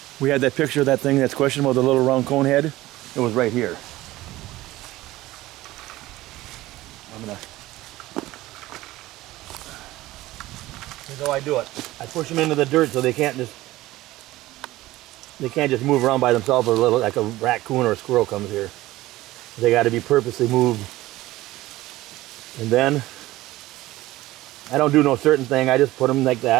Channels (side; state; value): left; quieter; 17.3 dB